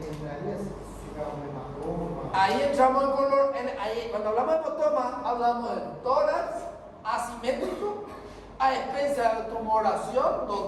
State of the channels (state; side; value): identical; both; correlation 1.00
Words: si digamos hematoma. Ahí entramos en color. Cuando hablamos de hematoma, hablamos de tórax asimétrico a expensa de tumoración,